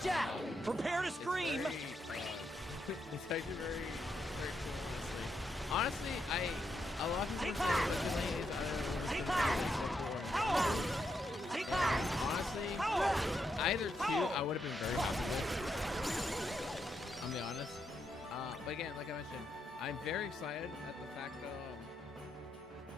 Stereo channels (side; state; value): both; normal; correlation 0.81